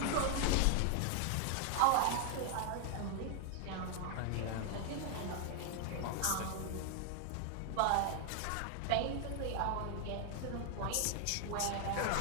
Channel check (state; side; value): different; both; correlation 0.00